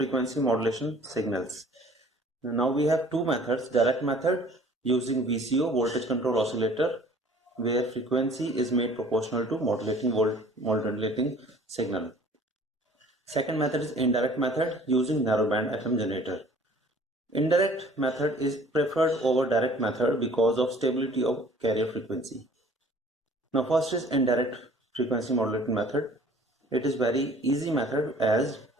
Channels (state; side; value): normal; both; correlation 0.52